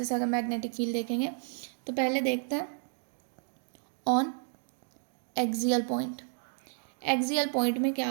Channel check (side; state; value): left; silent; 57 dB below the other